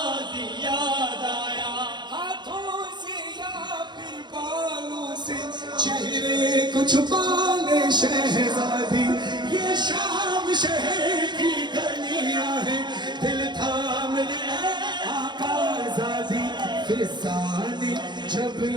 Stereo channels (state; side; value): late; left; 0.21 ms